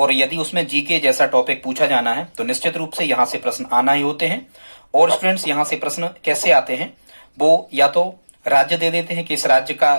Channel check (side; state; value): both; inverted; correlation -1.00